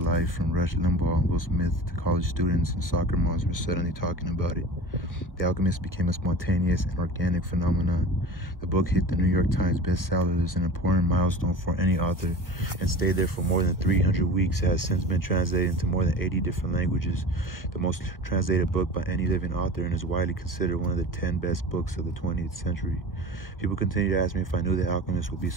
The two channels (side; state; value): right; late; 1.6 ms